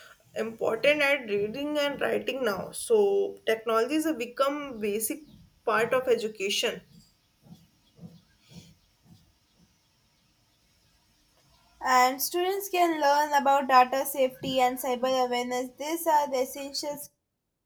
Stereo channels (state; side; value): identical; both; correlation 1.00